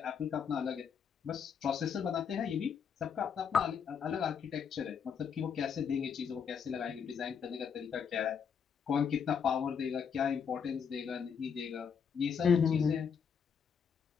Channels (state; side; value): quieter; right; 6.9 dB